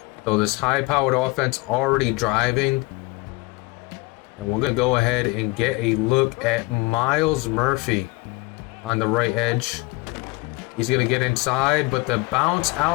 So this high-powered offense already driving. And we're going to go ahead and get a look at Miles Murphy on the right edge. He's going to get inside, but the bounce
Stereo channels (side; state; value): right; quieter; 23.4 dB